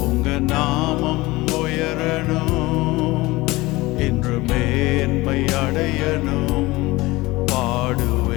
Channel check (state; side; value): quieter; right; 20.5 dB